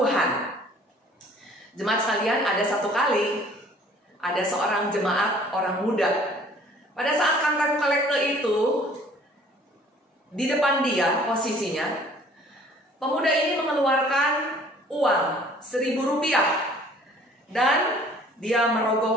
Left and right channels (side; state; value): both; normal; correlation 0.54